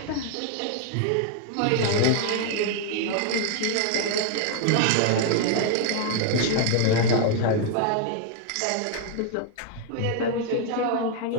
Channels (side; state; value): both; different; correlation 0.00